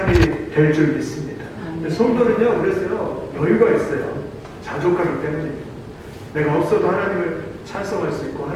될 줄 믿습니다. 성도는요, 그래서요, 여유가 있어요. 자족하기 때문입니다. 내가 없어도 하나님을 찬송할 수 있고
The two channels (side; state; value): both; identical; correlation 1.00